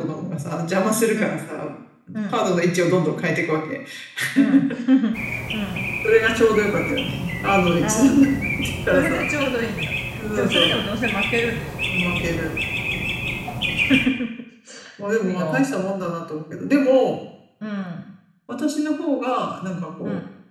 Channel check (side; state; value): both; identical; correlation 1.00